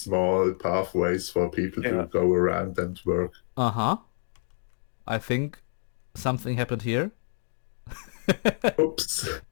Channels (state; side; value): silent; right; digital silence